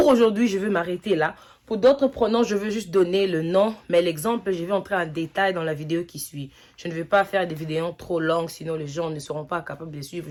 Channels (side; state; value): both; identical; correlation 1.00